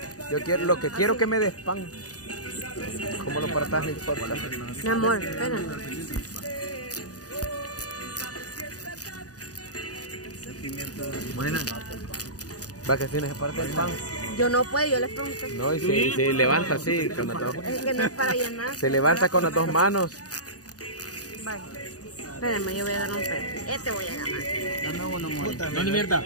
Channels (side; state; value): right; late; 0.67 ms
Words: lo que quiero que me des pan. Como lo partas no importa. Mi amor, espérame. Buena. Va que tienes que partir el pan. Yo no puedo, yo les pregunté. No, y se levanta así con las dos. Es que no es para llenar. Se levanta con las dos manos. Vaya. Espérame, yo voy a dar un pedazo. Este voy a ganar. No, ni mierda.